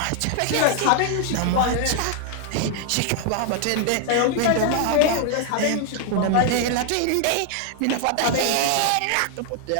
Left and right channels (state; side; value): different; both; correlation 0.00